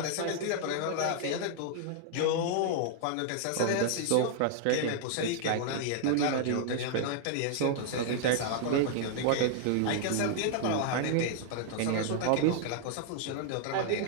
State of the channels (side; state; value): both; different; correlation -0.01